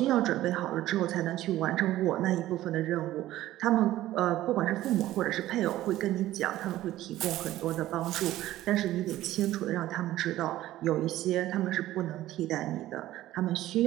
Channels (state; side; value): quieter; left; 14.8 dB